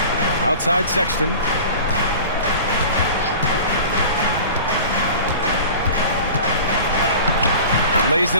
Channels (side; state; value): both; inverted; correlation -0.38